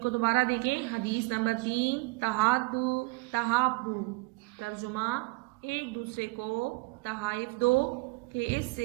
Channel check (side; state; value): left; quieter; 24.9 dB